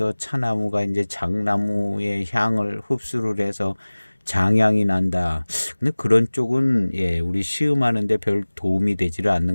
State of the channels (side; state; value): both; inverted; correlation -1.00